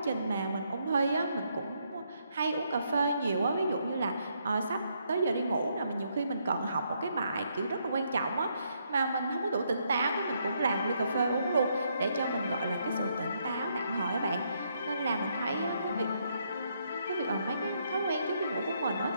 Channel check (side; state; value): both; inverted; correlation -0.75